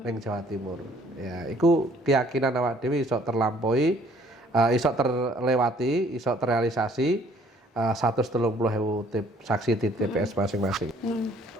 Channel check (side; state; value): both; normal; correlation 0.59